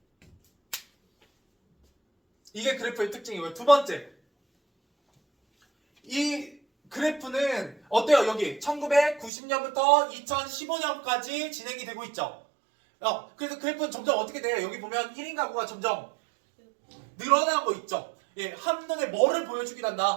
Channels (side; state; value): left; drops out; at 9.3 s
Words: 이게 그래프의 특징이고요. 두 번째, 이 그래프는 어때요? 여기 1990년부터 2015년까지 진행이 되고 있죠. 그래서 그래프는 점점 어떻게 돼요? 여기 보면 1인 가구가 점점 늘어나고 있죠. 예, 한눈에 뭐를 보여주긴